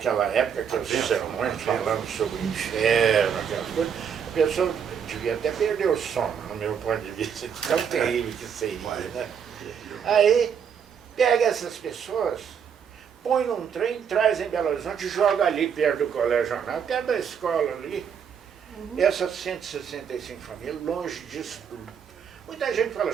época, aqueles sermões falando sobre o inferno, aquelas coisas. A pessoa devia até perder o sono, no meu ponto de vista, de tão terrível que seria, né? Aí, pega essas pessoas, põe num trem, traz em Belo Horizonte, joga ali perto do Colégio Arnaldo, perto da escola ali. Essas 165 famílias, longe disso tudo. Muita gente fala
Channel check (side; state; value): left; quieter; 7.5 dB